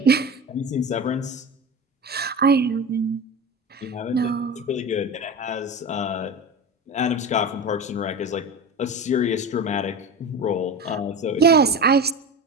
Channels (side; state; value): both; normal; correlation 0.28